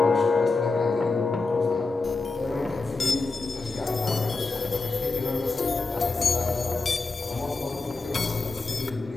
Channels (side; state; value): right; quieter; 3.7 dB